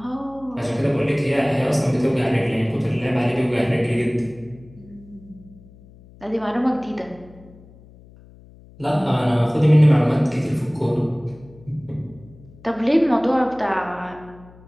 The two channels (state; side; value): noise; left; hum, 23 dB below the sound